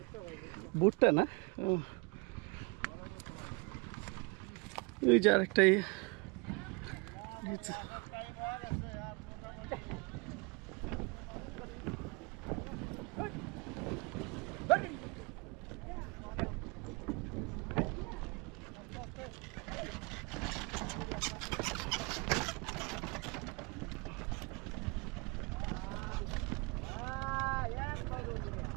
ভুট্টা না? ওই যে আরেকটাই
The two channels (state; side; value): quieter; left; 29.8 dB